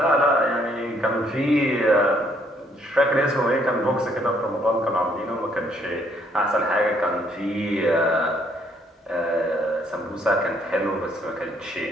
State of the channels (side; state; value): both; normal; correlation 0.67